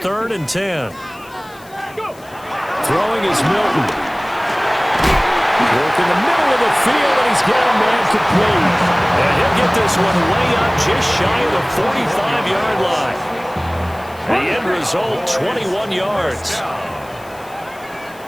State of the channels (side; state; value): left; noise; hiss, 25 dB below the sound